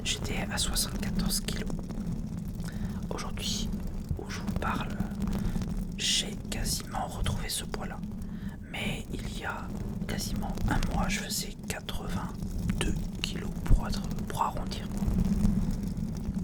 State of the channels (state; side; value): identical; both; correlation 1.00